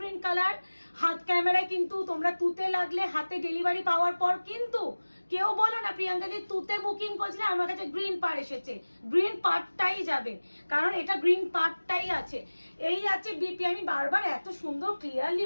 কালার। হাত ক্যামেরায় কিন্তু তোমরা তুতে লাগলে হাতে ডেলিভারি পাওয়ার পর কিন্তু কেউ বলো না প্রিয়াঙ্কা দি তুতে বুকিং করছিলে, আমার কাছে গ্রিন পার এসেছে, গ্রিন পার্টটাই যাবে, কারণ এটা গ্রিন পার্টটাই আছে। এই আছে বিপি। আমি বারবার এত সুন্দর ক্লিয়ারলি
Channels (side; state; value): both; inverted; correlation -1.00